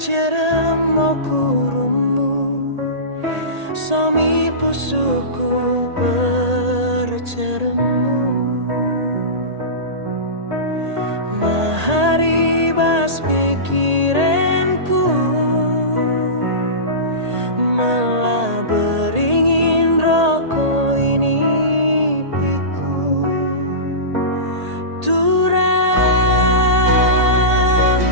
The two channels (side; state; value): left; late; 1.8 ms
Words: kurumu, somi pusuku berceremu. Maharibas pikiranku, malah beringin rokok ini piku. Turang